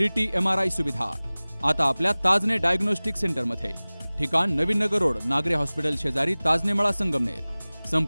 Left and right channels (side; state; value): both; inverted; correlation -0.99